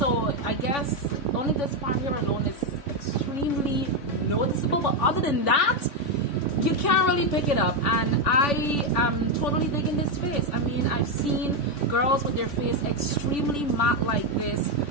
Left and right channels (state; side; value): late; right; 3.5 ms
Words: I guess only this part here alone is extremely noticeable. But other than that, you can't really pick it up, and I am totally digging this face. I mean, I've seen girls with their face extremely matte like this,